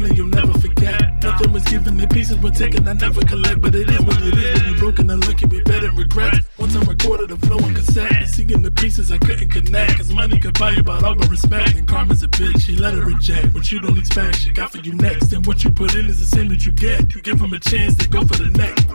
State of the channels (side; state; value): both; inverted; correlation -1.00